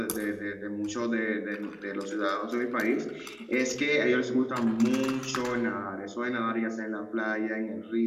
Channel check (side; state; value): both; identical; correlation 1.00